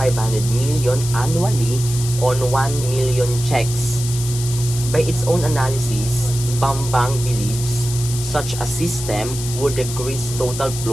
million annually on 1 million checks. By its own analysis, Bambang believes such a system would decrease total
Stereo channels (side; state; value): left; noise; hiss, 8 dB below the sound